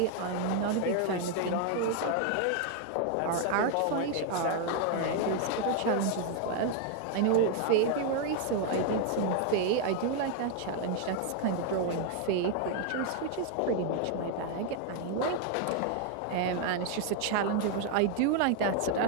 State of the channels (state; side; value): different; both; correlation 0.00